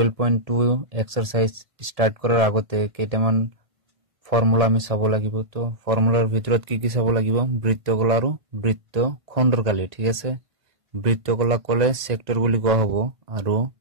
এক্সাৰসাইজ ষ্টাৰ্ট কৰাৰ আগতে কেইটামান ফৰ্মুলা আমি চাব লাগিব তো ফৰ্মুলাৰ ভিতৰত কি চাব লাগিব বৃত্তকলা আৰু বৃত্তখণ্ডৰ কালি ঠিক আছে বৃত্তকলা কলে সেক্টৰ বুলি কোৱা হ'ব আৰু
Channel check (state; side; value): late; left; 1.5 ms